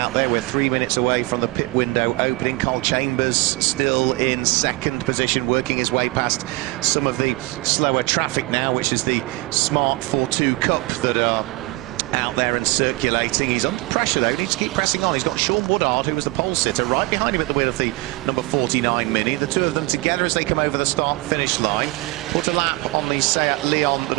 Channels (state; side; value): quieter; left; 21.6 dB